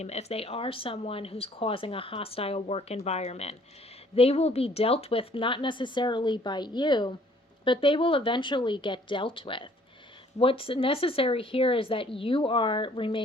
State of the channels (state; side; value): normal; both; correlation 0.59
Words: if they are someone who's causing a hostile work environment, they will be dealt with not necessarily by you, but they will eventually get dealt with. What's necessary here is that you are